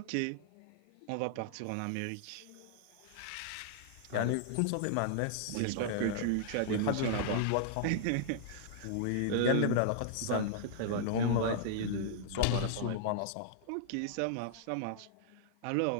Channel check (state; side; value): different; both; correlation -0.01